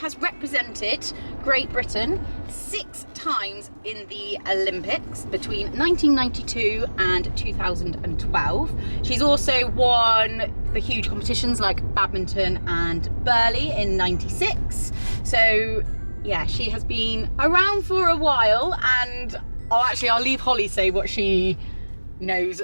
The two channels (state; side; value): inverted; both; correlation -1.00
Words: represented Great Britain 6 times in the Olympics between 1992 and 2012. She's also won the huge competitions like badminton and Burley in '96. So yeah, she has been around for a while, and I'll leave Holly say what she knows